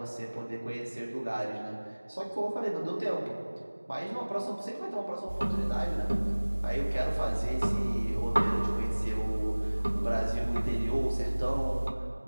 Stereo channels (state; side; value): inverted; both; correlation -1.00